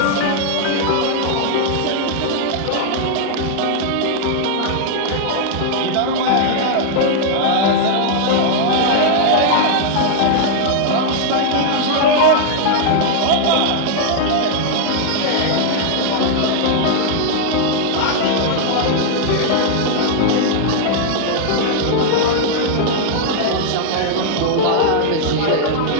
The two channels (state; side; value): different; both; correlation -0.01